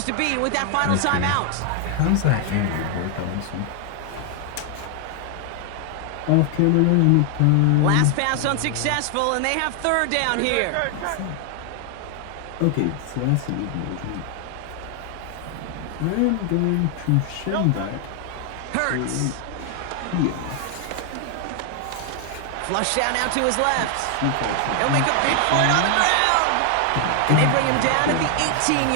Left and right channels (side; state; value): both; different; correlation 0.00